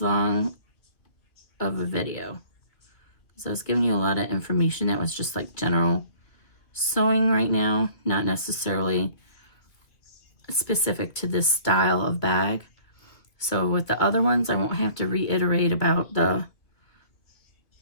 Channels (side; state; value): right; late; 2.2 ms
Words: long of a video. So I was giving you a lot of information that was just like general sewing right now, not necessarily specific to this style of bag. So with the other ones, I won't have to reiterate about the